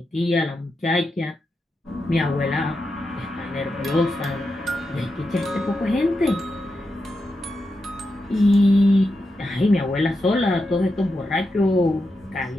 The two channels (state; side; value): normal; both; correlation 0.87